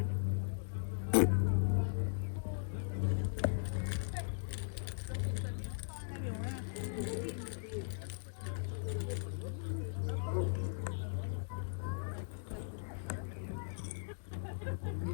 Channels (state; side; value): silent; right; digital silence